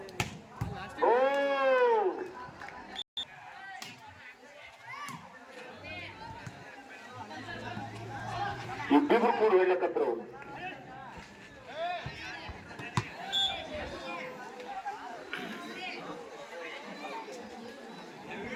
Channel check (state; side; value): identical; both; correlation 1.00